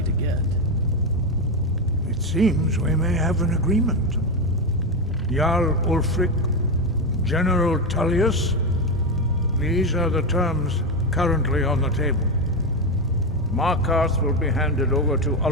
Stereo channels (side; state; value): both; normal; correlation 0.11